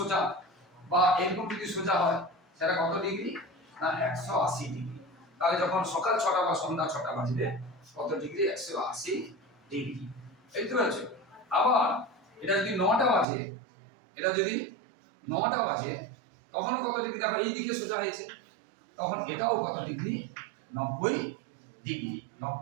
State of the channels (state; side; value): drops out; left; at 13.2 s